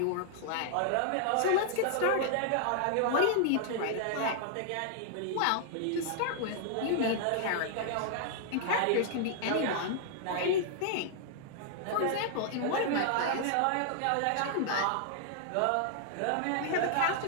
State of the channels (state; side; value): different; both; correlation -0.01